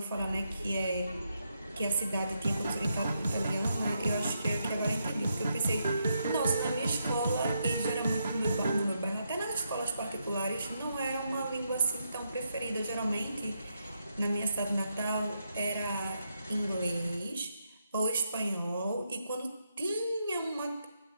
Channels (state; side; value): inverted; both; correlation -0.81